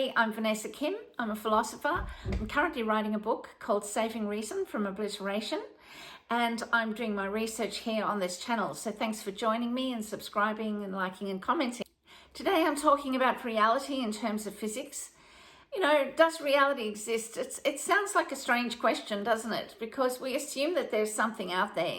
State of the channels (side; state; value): both; identical; correlation 1.00